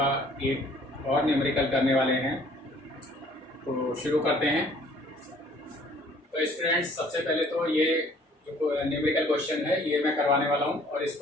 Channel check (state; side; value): normal; both; correlation 0.56